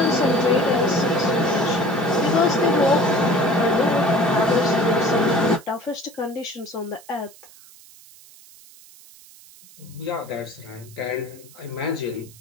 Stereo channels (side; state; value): right; noise; hiss, 23 dB below the sound